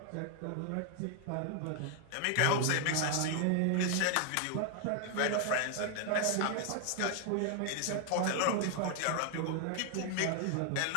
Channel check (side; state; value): both; different; correlation 0.00